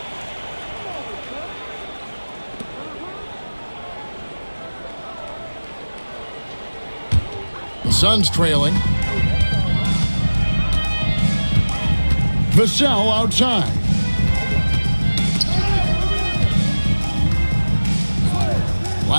The Suns trailing. Vassell outside.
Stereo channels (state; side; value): inverted; both; correlation -1.00